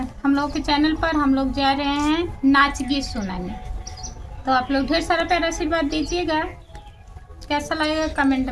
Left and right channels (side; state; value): both; identical; correlation 1.00